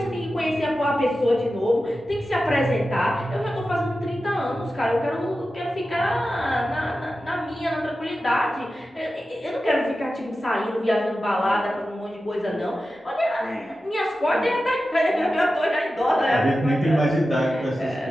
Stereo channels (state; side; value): normal; both; correlation 0.93